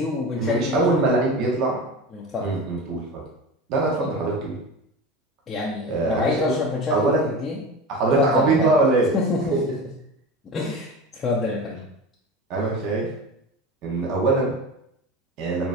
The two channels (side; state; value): both; normal; correlation 0.29